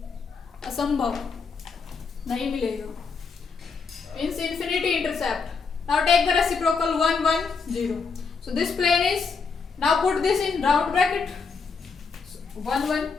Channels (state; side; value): quieter; right; 5.1 dB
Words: असंभव, नहीं मिलेगा। Means infinity intercept. Now take the reciprocal 1 1 0. So this plane is, now put this in round bracket, 1 1